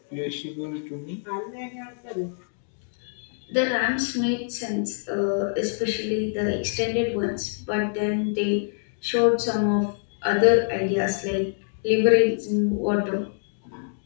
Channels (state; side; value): silent; right; digital silence